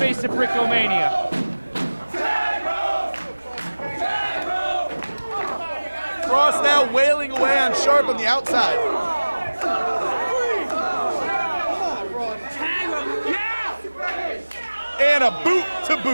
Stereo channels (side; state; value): both; inverted; correlation -1.00